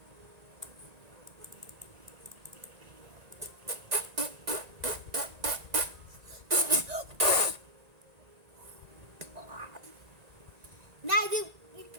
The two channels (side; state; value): left; late; 1.9 ms